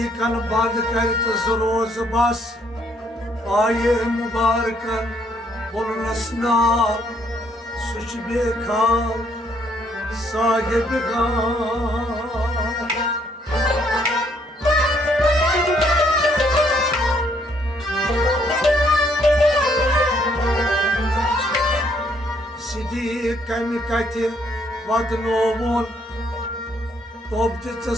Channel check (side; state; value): both; normal; correlation 0.68